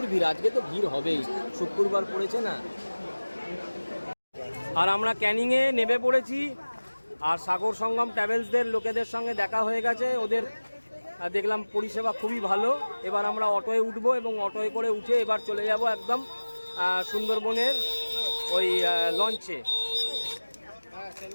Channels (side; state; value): both; inverted; correlation -1.00